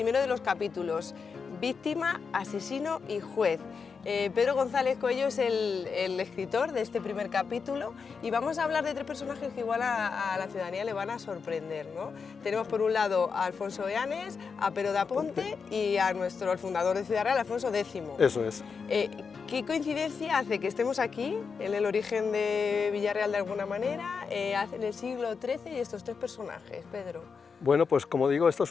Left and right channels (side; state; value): right; quieter; 5.5 dB